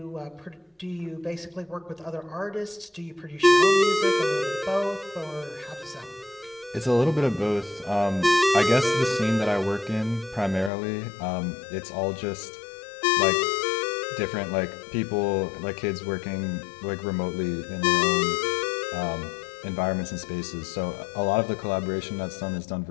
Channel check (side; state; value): right; drops out; at 10.7 s